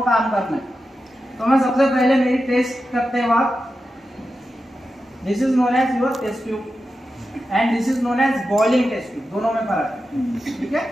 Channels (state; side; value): normal; both; correlation 0.90